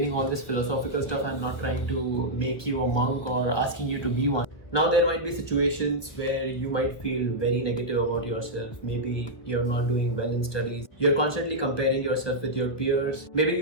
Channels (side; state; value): right; late; 1.4 ms